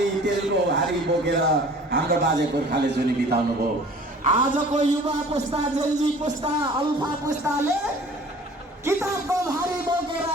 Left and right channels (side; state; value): both; normal; correlation 0.48